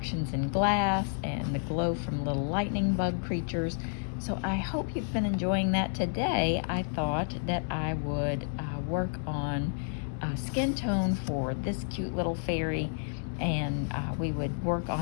in glass and the glow from little lightning bug creatures. So I hope you've been enjoying that. Today I thought that I would work on skin tone for this cute little fairy, and we would work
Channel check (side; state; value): right; silent; 57 dB below the other